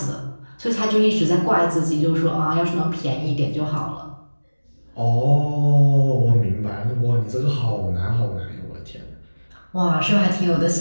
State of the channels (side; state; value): both; inverted; correlation -1.00